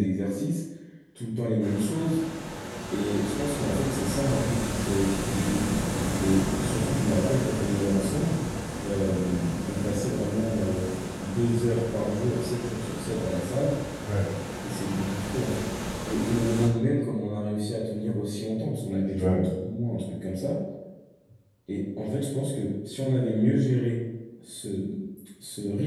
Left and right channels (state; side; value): identical; both; correlation 1.00